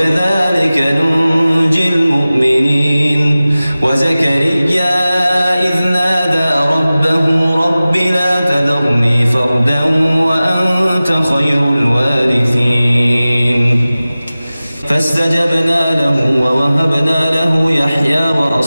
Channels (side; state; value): both; inverted; correlation -0.97